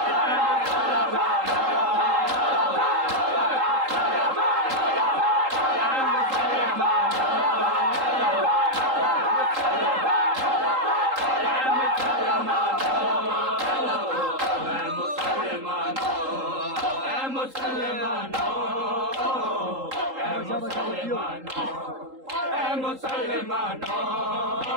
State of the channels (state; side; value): late; left; 3.8 ms